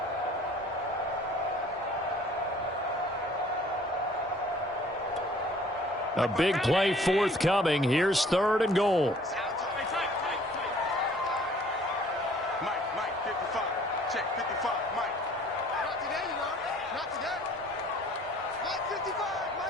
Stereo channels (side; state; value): both; normal; correlation 0.55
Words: A big play forthcoming. Here's 3rd and goal. Mike, 55. Check 55, Mike. Not today, you know. Not today. Mike 55,